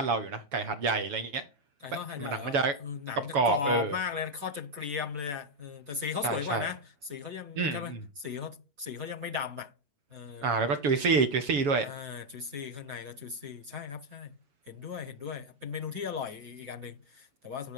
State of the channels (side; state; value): left; late; 7.1 ms